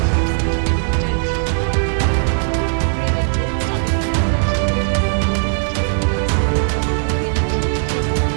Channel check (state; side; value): silent; left; digital silence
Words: troops into enemy territory. Ukrainian drones targeted residential buildings in the border regions of Kursk. Ukrainian troops claim to have